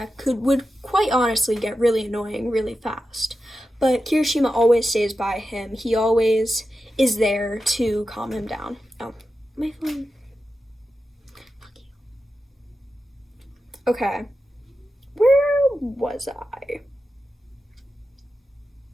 would quite honestly get really annoying really fast. But Kirishima always stays by him. He always is there to calm him down. Oh, my phone. Fuck you. Okay. Where was I?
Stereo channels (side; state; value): both; normal; correlation 0.91